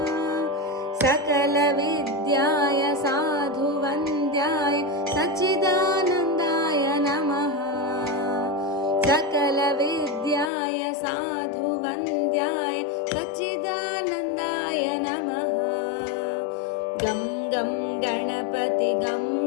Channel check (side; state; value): right; drops out; at 10.5 s